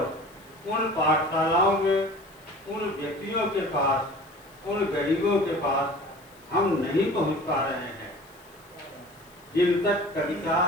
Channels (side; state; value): left; noise; hiss, 29 dB below the sound